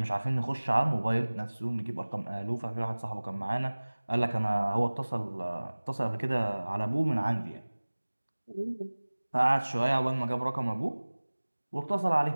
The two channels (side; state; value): both; inverted; correlation -1.00